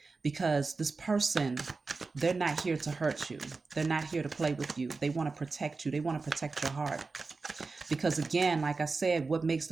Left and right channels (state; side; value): quieter; left; 4.1 dB